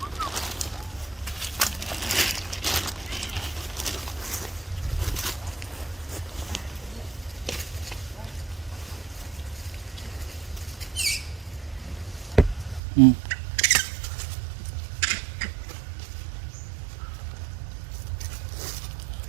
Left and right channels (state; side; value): drops out; left; at 12.8 s